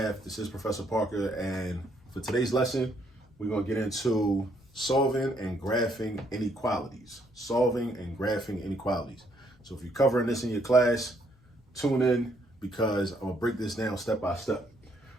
This is Professor Parker, and for today's lesson, we're going to get into solving and graphing inequalities. Solving and graphing inequalities. So if you're covering this in your class, tune in because I'm going to break this down step by step.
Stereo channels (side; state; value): both; normal; correlation 0.71